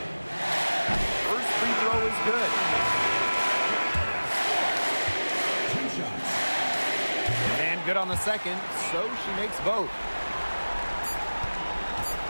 First free throw is good. 2 shots. And good on the second, so she makes both.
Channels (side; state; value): both; inverted; correlation -1.00